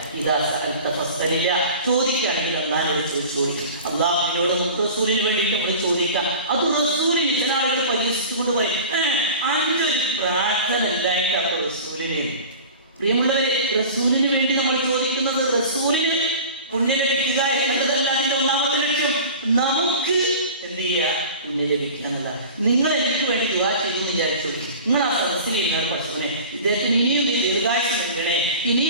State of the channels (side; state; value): both; inverted; correlation -0.39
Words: ഇതാ ചോദിക്കുകയാണെങ്കിൽ അല്ലാഹുവിനോട് ചോദിച്ചോളി. അല്ലാഹുവിനോട് നമുക്ക് റസൂലിന് വേണ്ടിയിട്ട് നമ്മൾ ചോദിക്കാം. അത് റസൂലിന് ചില ആളുകൾ പരിഹസിച്ചുകൊണ്ട് പറയും, 5 പ്രാർത്ഥന ഇല്ലായിട്ട് അപ്പൊ റസൂലിന്. പ്രിയമുള്ളവരെ, റസൂലിന് വേണ്ടി നമ്മൾ ചോദിക്കുന്നത് റസൂലിന് പുണ്യം ലഭിക്കുക എന്നതല്ല അതിന്റെ ഒന്നാമത്തെ ലക്ഷ്യം. നമുക്ക് എന്ത് ചെയ്യുക? പുണ്യം ലഭിക്കുക എന്നല്ല. നിങ്ങൾ എനിക്ക് വേണ്ടി ദുആ ചെയ്തു വിചാരിച്ചു. നിങ്ങൾ ആ സദസ്സിൽ ഇരുന്ന പഠിച്ചവനെ ഇദ്ദേഹത്തിന് ഇനിയും ദീർഘായുസ്സ് നൽകണേ,